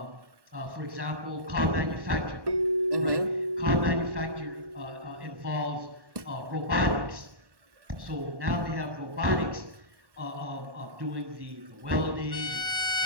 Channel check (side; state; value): left; late; 1.1 ms